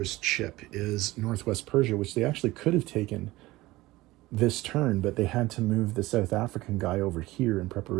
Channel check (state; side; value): quieter; left; 18.8 dB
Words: chip is Northwest Persia, which they actually could have taken this turn, but they had to move the South African guy over here in